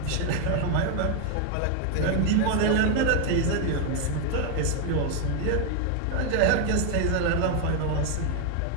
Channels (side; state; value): both; different; correlation 0.00